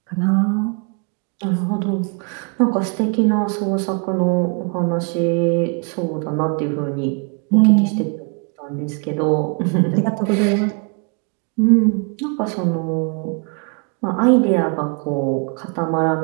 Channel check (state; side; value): quieter; left; 35.1 dB